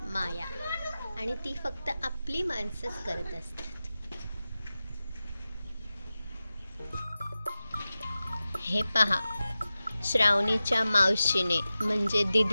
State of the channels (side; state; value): both; inverted; correlation -0.95